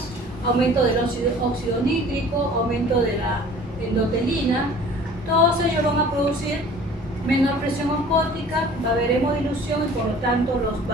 aumento del óxido nítrico, aumento de la endotelina. Todos ellos van a producir menor presión osmótica, va a haber hemodilución y por lo tanto los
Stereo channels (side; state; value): both; normal; correlation 0.48